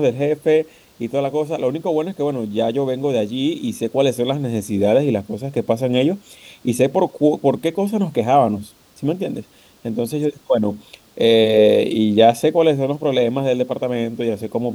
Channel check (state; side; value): identical; both; correlation 1.00